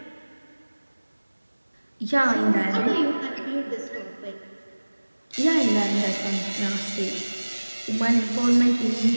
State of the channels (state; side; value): inverted; both; correlation -1.00